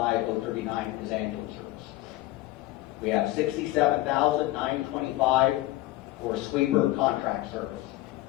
is ambulance service. We have $67,925 for sweeper contract service.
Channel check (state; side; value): quieter; right; 17.1 dB